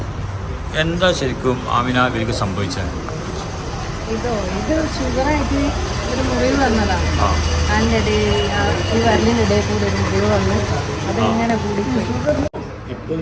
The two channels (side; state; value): both; identical; correlation 1.00